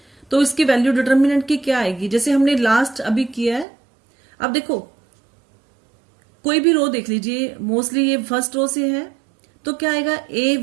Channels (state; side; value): drops out; left; at 3.7 s